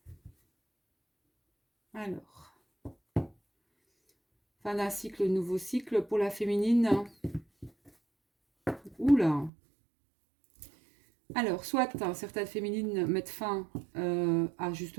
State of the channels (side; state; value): left; drops out; at 9.5 s